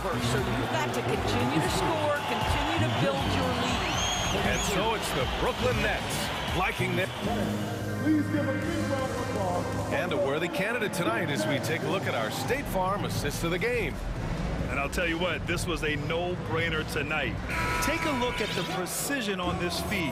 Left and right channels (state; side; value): identical; both; correlation 1.00